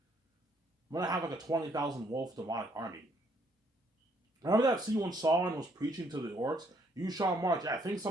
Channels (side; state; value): both; normal; correlation 0.68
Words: I'm gonna have like a 20,000 wolf demonic army. Remember that scene when Sauron was preaching to the orcs? You shall march. Yeah, I think